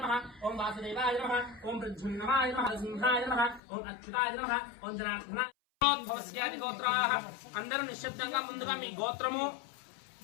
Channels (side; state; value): right; drops out; at 3.6 s